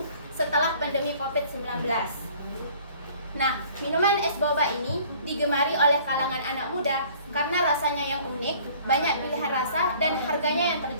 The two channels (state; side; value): inverted; both; correlation -0.53